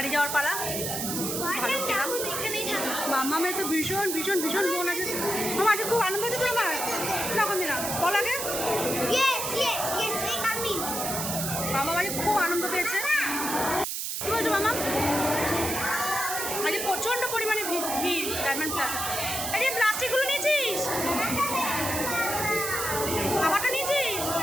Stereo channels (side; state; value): right; noise; hiss, 3 dB below the sound